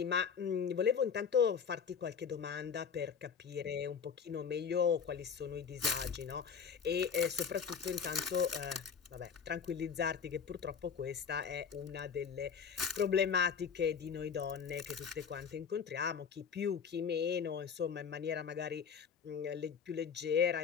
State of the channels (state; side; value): quieter; right; 6.7 dB